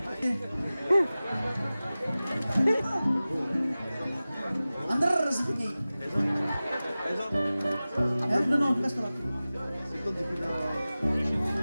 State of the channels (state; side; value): inverted; both; correlation -0.97